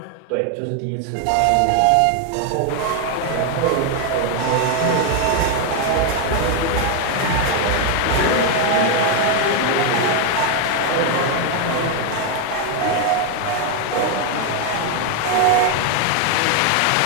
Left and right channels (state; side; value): different; both; correlation 0.01